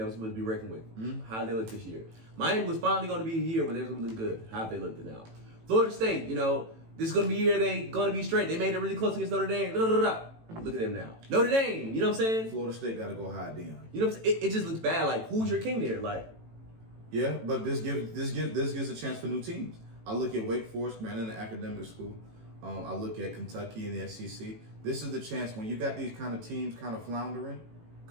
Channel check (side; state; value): left; late; 18 ms